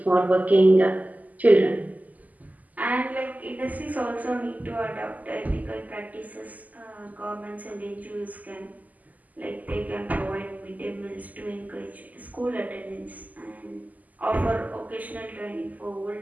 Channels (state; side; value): late; left; 0.079 ms